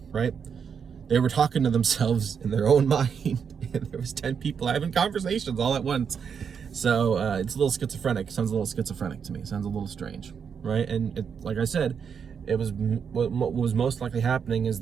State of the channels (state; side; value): quieter; left; 6.8 dB